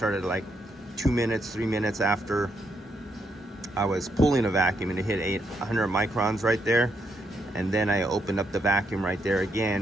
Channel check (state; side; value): normal; both; correlation 0.78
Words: like 2 minutes, 3 minutes after I was pulling a vacuum, and it hit 800 microns right there. And then I opened up the vacuum right there